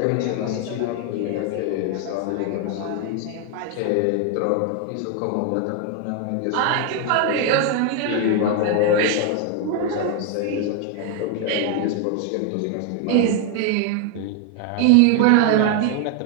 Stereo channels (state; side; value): different; both; correlation 0.00